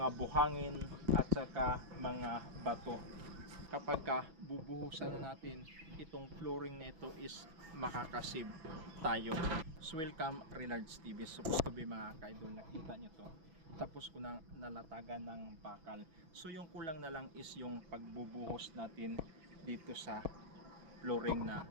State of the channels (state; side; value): late; left; 6.1 ms